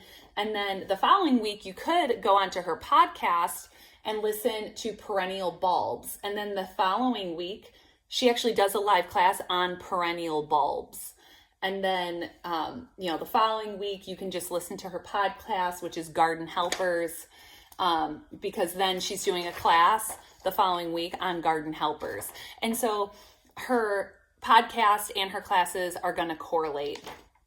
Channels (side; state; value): both; identical; correlation 1.00